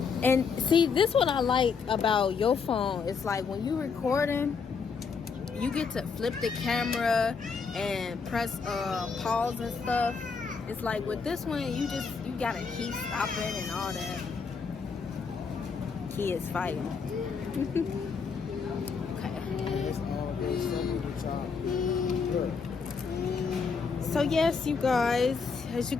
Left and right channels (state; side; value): quieter; right; 5.4 dB